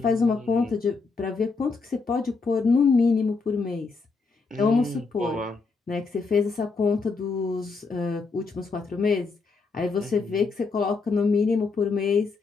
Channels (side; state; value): right; quieter; 4.4 dB